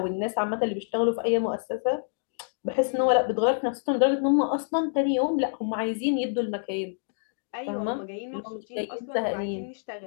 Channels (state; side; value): silent; right; digital silence